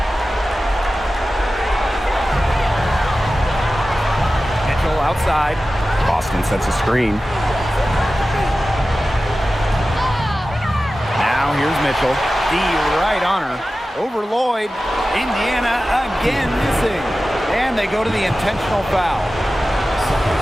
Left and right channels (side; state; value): both; normal; correlation 0.95